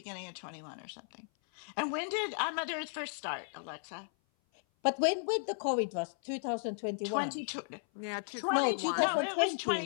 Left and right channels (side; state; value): right; silent; 54 dB below the other